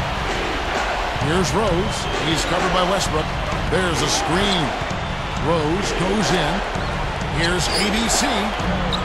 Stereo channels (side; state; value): both; identical; correlation 1.00